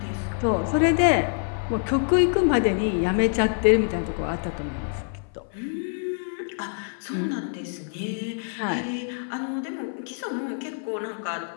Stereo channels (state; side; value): silent; right; 56 dB below the other